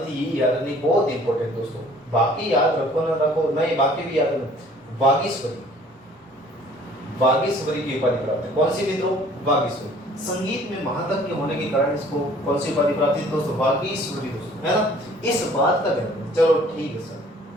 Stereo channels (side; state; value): both; normal; correlation 0.54